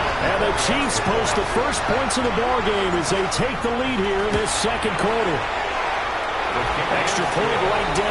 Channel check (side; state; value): both; identical; correlation 1.00